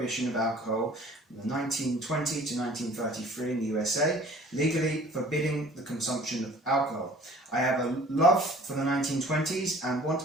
of alcohol from 1920 to 1933 in the USA, legally forbidding the consumption of alcohol. I have a love for the 1920s and want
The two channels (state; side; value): normal; both; correlation 0.50